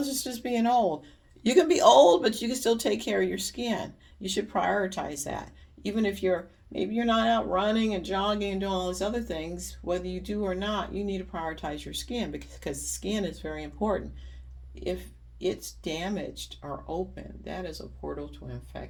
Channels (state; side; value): identical; both; correlation 1.00